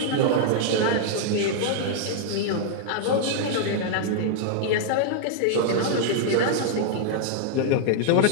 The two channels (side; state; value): both; different; correlation -0.01